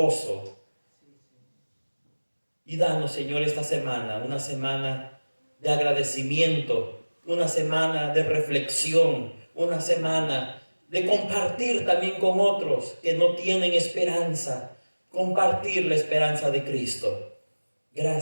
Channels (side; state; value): both; inverted; correlation -1.00